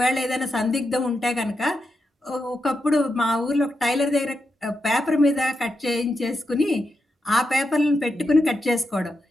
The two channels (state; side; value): normal; both; correlation 0.86